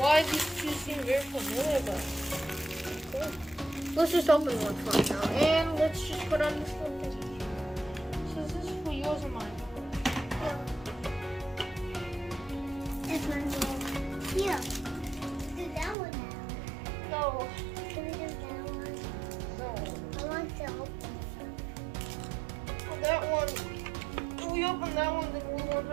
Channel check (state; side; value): drops out; left; at 16.0 s